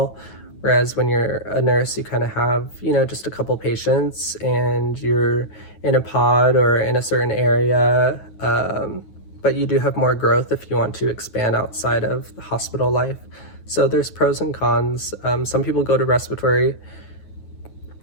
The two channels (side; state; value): right; late; 9.3 ms